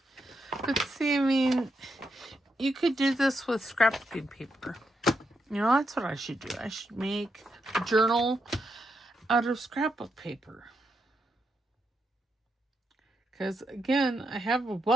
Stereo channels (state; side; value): normal; both; correlation 0.82